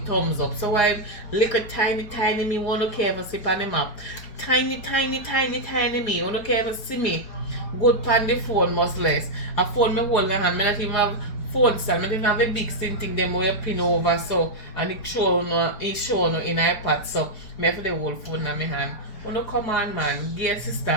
thumbs up. So I little tiny me won't care if I sip on them up. Tiny me. Won't care if I see me. Good pan the phone must less. A phone me hold my hand. Me not even have phone stand. Me not even have a big thing them where you pin over so and it show no in iPad. So me have the whole phone in my hand. Wanna come on man, give sister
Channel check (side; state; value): right; late; 4.7 ms